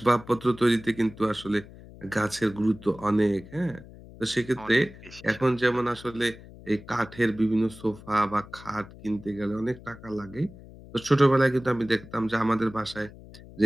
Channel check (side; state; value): left; noise; hum, 18 dB below the sound